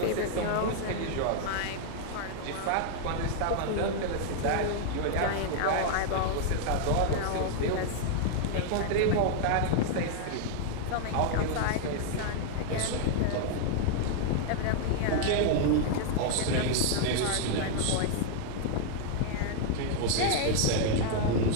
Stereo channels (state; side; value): different; both; correlation 0.00